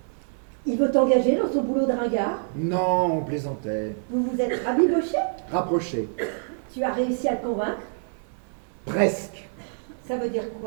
Il veut t'engager dans son boulot de ringard. Non, on plaisantait. Vous vous êtes rabiboché. Rapproché. Tu as réussi à le convaincre. Presque. Ça veut dire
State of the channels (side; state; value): left; silent; digital silence